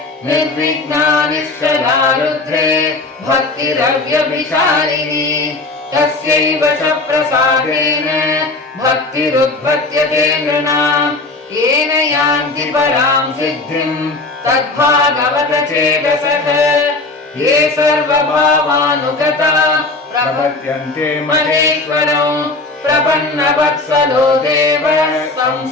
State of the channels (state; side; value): quieter; right; 3.3 dB